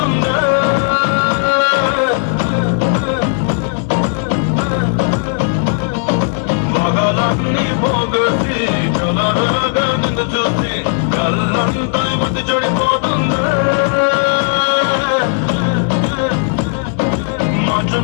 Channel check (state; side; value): silent; right; 70 dB below the other